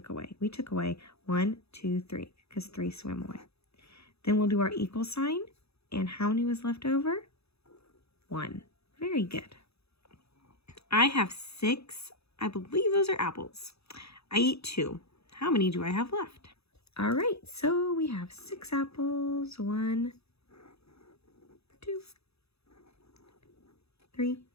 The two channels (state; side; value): late; right; 0.79 ms